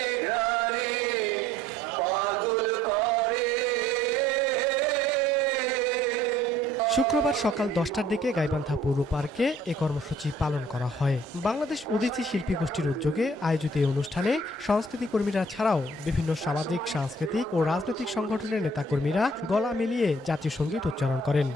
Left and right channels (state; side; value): normal; both; correlation 0.57